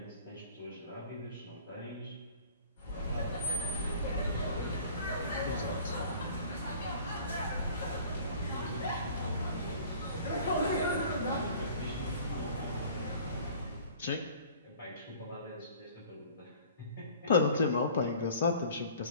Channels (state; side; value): inverted; both; correlation -0.47